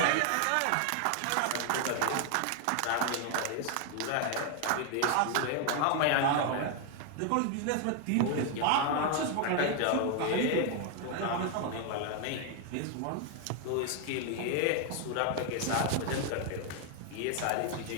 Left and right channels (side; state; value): both; different; correlation 0.01